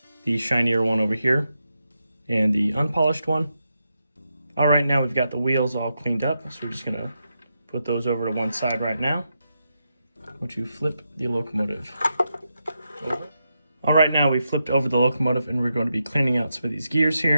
the shinier one over here and the unpolished one. All right, now we've got the wheels all cleaned up, so we're just gonna put those over to one side right now. Once you flip the locomotive over. All right, now we flipped over the locomotive and we're going to be cleaning out some of these gears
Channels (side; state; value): both; inverted; correlation -0.85